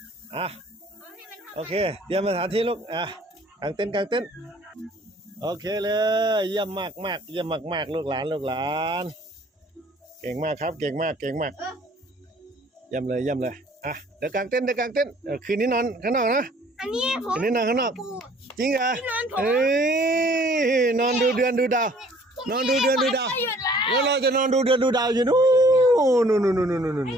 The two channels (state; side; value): normal; both; correlation 0.56